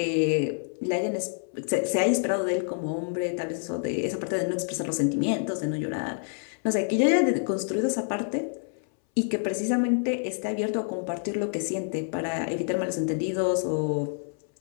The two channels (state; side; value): silent; right; 60 dB below the other